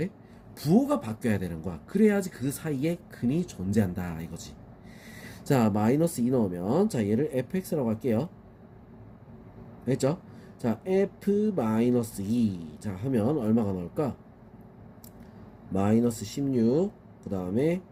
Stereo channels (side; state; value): both; identical; correlation 1.00